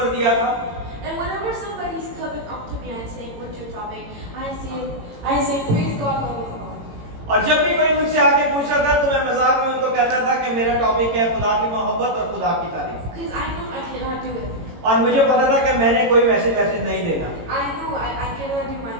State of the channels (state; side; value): late; left; 18 ms